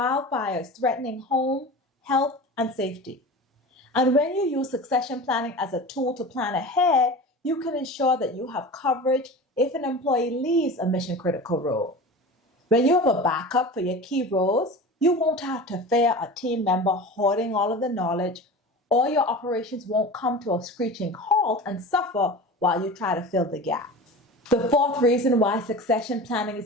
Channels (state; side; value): normal; both; correlation 0.33